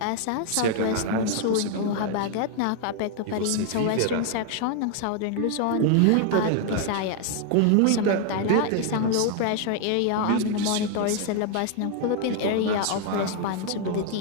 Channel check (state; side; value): different; both; correlation 0.00